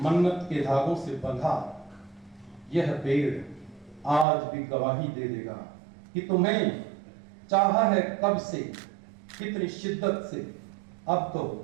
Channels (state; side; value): drops out; left; at 4.2 s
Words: मन्नत के धागों से बंधा यह पेड़ आज भी गवाही दे देगा कि तुम्हें चाहा है कब से, कितनी शिद्दत से, अब तो